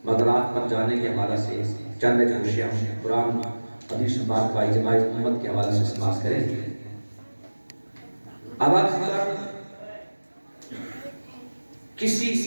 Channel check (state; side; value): inverted; both; correlation -1.00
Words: مدرات پر جانے کے حوالہ سے چند اشیاء قرآن حدیث بات کا اجماع امت کے حوالہ سے سماعت کریں اب اگر کسی